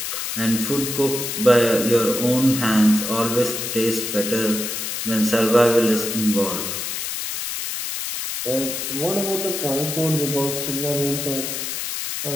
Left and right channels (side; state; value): left; noise; hiss, 4 dB below the sound